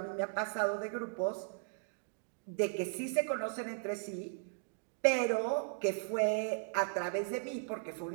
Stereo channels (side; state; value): left; silent; digital silence